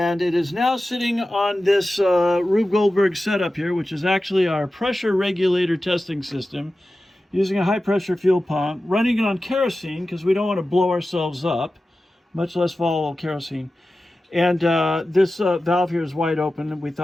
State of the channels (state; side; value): normal; both; correlation 0.94